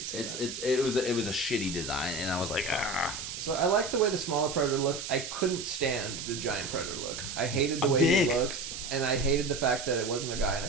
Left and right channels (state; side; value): noise; right; hiss, 7 dB below the sound